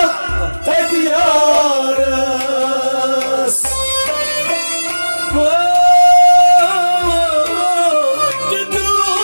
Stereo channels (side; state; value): both; inverted; correlation -1.00